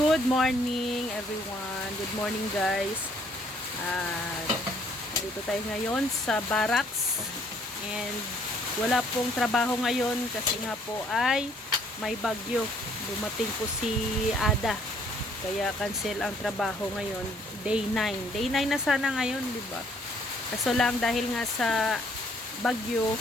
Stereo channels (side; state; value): both; normal; correlation 0.63